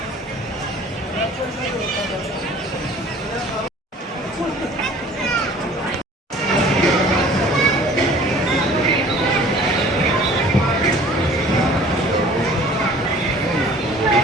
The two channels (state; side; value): normal; both; correlation 0.50